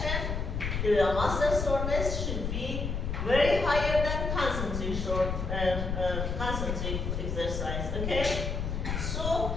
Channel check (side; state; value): left; noise; rumble, 2 dB below the sound